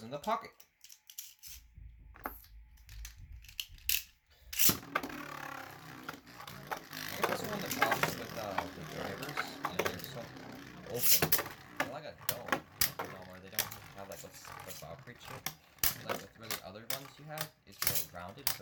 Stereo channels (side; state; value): both; identical; correlation 1.00